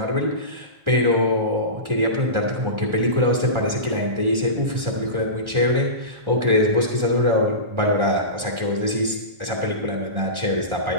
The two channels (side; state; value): left; late; 1.4 ms